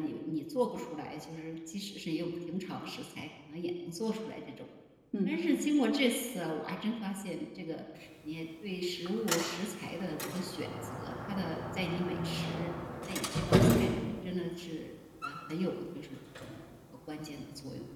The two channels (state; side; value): identical; both; correlation 1.00